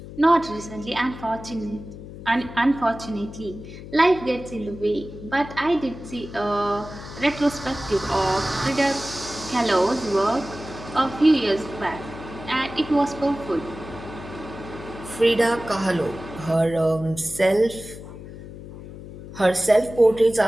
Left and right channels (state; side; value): noise; left; hum, 13 dB below the sound